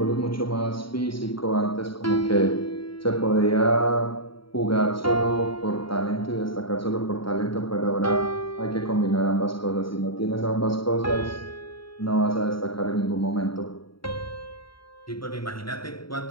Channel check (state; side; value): late; right; 0.74 ms